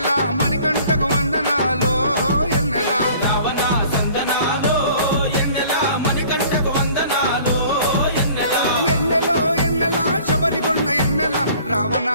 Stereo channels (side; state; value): both; inverted; correlation -0.51